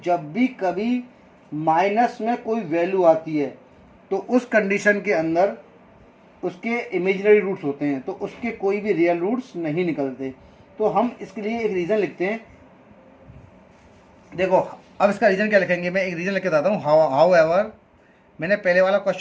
जब भी कभी माइनस में कोई वैल्यू आती है तो उस कंडीशन के अंदर उसके इमेजिनरी रूट्स होते हैं, तो उसके कोई भी रियल रूट्स नहीं निकलते। तो हम इसके लिए एक रीज़न लिखते हैं। देखो अब इसका रीज़न क्या लिखेंगे, मैं एक रीज़न लिख के बताता हूँ। हाउ एवर, मैंने पहले वाला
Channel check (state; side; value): identical; both; correlation 1.00